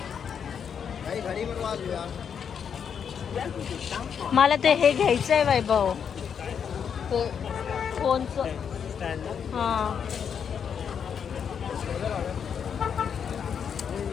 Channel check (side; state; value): right; quieter; 7.4 dB